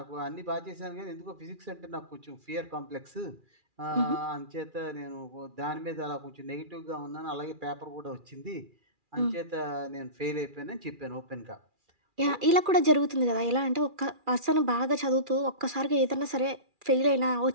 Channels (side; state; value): left; late; 2.4 ms